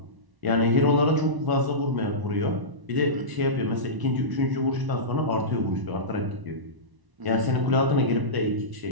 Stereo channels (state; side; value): late; left; 1.0 ms